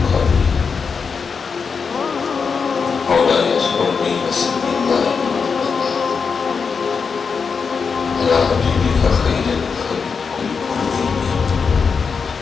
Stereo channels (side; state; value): right; quieter; 5.5 dB